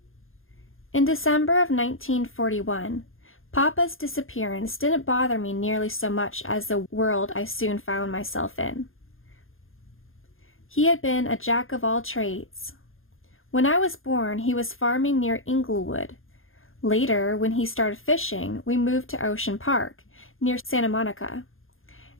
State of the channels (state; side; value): late; right; 0.60 ms